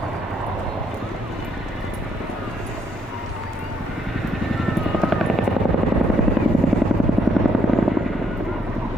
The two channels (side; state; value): both; normal; correlation 0.71